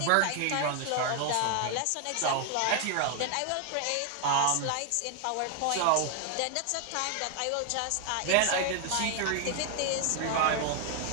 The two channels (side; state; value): both; different; correlation 0.00